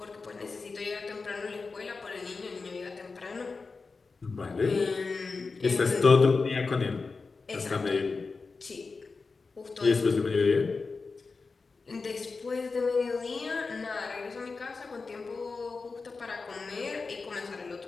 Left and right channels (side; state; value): right; quieter; 4.3 dB